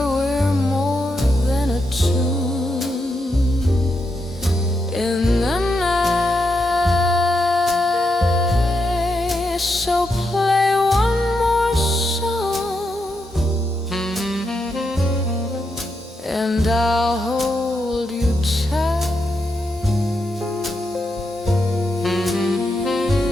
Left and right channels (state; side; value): normal; both; correlation 0.83